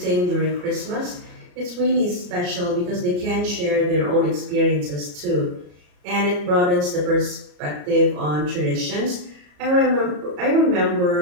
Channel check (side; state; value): left; late; 34 ms